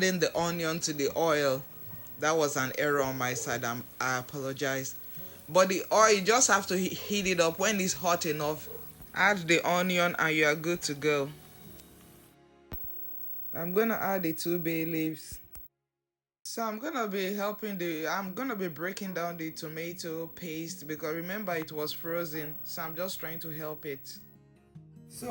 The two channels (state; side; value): identical; both; correlation 1.00